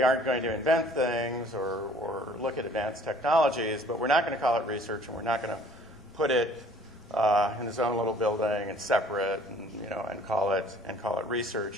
aren't going to invent things or look at advanced technologies, but we're not going to call it research, and we're not going to put it in its own little building and separate, and call it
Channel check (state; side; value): normal; both; correlation 0.54